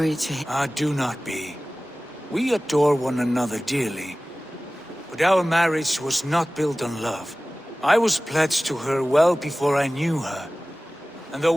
to... do not be. We adore one another dearly. But our marriage was not built on love. I was pledged to her well before I knew her. And though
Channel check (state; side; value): normal; both; correlation 0.97